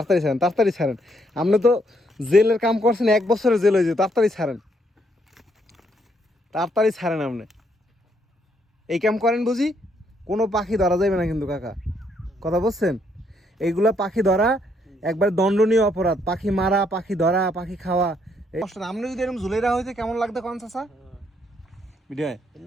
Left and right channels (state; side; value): normal; both; correlation 0.72